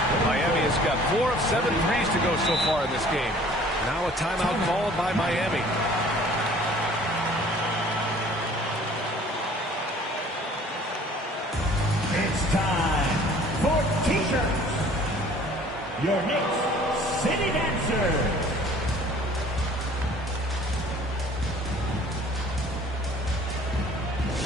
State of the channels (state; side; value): normal; both; correlation 0.52